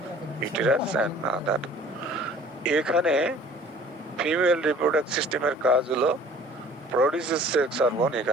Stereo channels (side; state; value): both; normal; correlation 0.50